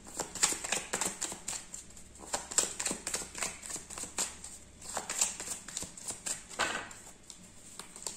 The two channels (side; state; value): both; identical; correlation 1.00